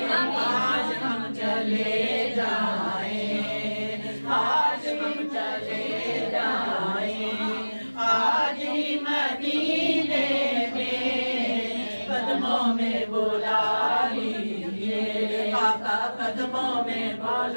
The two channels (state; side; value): inverted; both; correlation -1.00